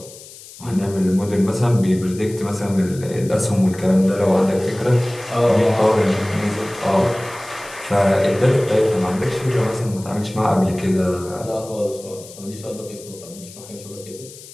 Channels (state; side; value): noise; left; hiss, 18 dB below the sound